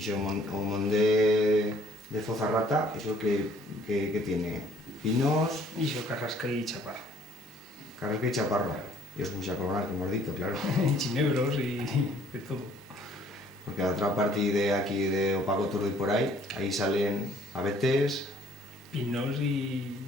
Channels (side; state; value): both; normal; correlation 0.59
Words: si o mon de Fozarrata, ¿eso que tiene? ¿Pinos? Y yo carrasca y chaparro. Carrasca y chaparro. Y os puse a coronar, que hemos dicho, claro. Y chinebros y de todo. Porque a otra parte de aquí de Opaco Turdo y por ahí salen abetes, Pinos y